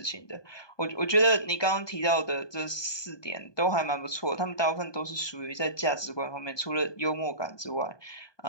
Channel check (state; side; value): late; right; 1.2 ms